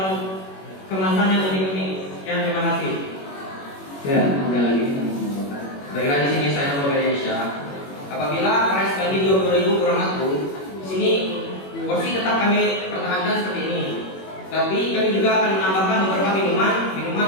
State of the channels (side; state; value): right; late; 21 ms